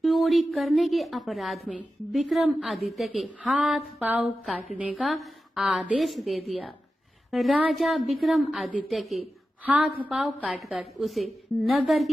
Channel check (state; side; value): normal; both; correlation 0.92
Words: चोरी करने के अपराध में विक्रमादित्य के हाथ पांव काटने का आदेश दे दिया। राजा विक्रमादित्य के हाथ पांव काटकर उसे नगर